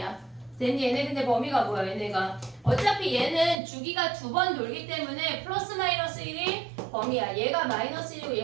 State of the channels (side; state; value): left; drops out; at 3.6 s